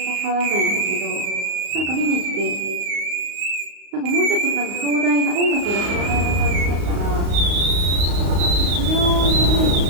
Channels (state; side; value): late; left; 35 ms